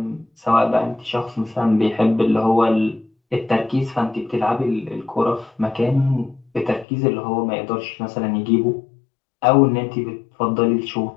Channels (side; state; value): right; drops out; at 6.9 s